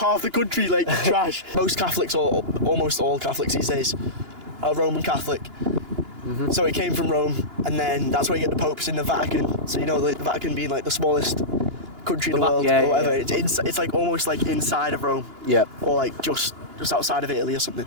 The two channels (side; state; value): left; late; 2.9 ms